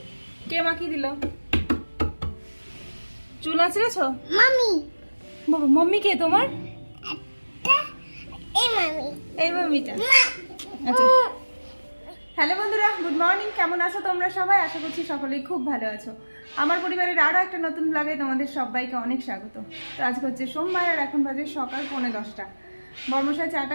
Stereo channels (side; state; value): both; inverted; correlation -1.00